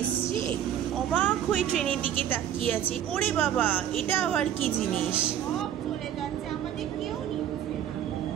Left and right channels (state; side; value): quieter; left; 10.4 dB